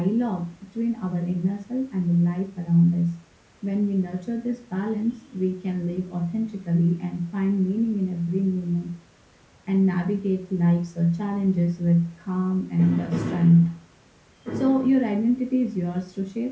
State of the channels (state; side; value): identical; both; correlation 1.00